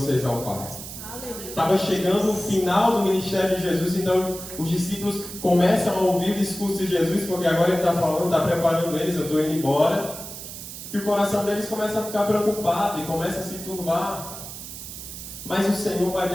ao Pai. Estava chegando o final do ministério de Jesus, então os discípulos começam a ouvir o discurso de Jesus, porque agora ele está falando, está preparando eles: eu estou indo embora. E o coração deles começa a ficar preocupado e começa a se turbar. Mas o Senhor vai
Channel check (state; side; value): noise; right; hiss, 11 dB below the sound